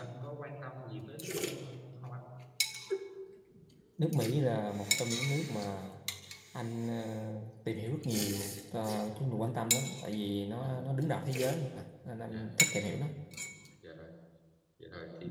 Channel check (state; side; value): identical; both; correlation 1.00